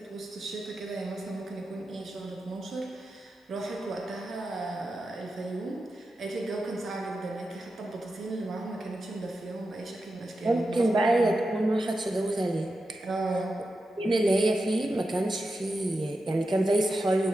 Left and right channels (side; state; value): both; normal; correlation 0.90